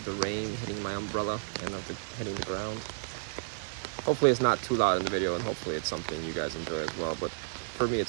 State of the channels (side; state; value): left; silent; digital silence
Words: the rain hitting my umbrella and of hitting the ground. Hopefully it's not too loud in the video, and hopefully it's something you guys enjoy as well, but for me